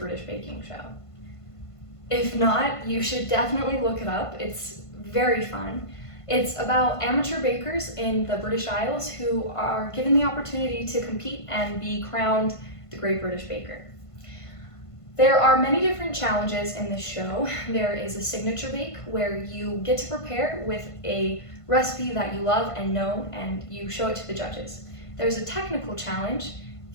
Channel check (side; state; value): right; late; 1.5 ms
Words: Baking Show? If not, you should definitely look it up. It's very fun. It's about amateur bakers in the British Isles who are given the opportunity to compete and be crowned the Great British Baker. There are many different challenges in this show. There is a signature bake where you get to prepare with a recipe that you love and know, and you show it to the judges. There's a technical challenge